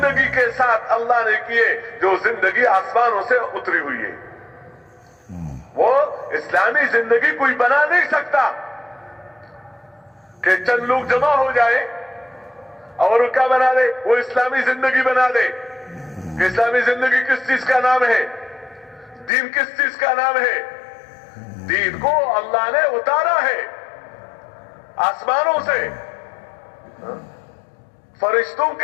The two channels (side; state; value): right; drops out; at 19.3 s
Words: کے ساتھ اللہ نے کیے جو زندگی آسمانوں سے اتری ہوئی ہے۔ وہ اسلامی زندگی کوئی بنا نہیں سکتا کہ چند لوگ جمع ہو جائے اور کیا بنا دے، وہ اسلامی زندگی بنا دے۔ کہ اسلامی زندگی کس چیز کا نام ہے؟ دین کس چیز کا نام ہے؟ دین کو اللہ نے اتارا ہے آسمانوں سے، فرشتوں